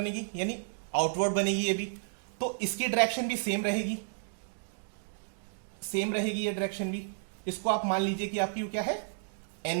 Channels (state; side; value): silent; left; digital silence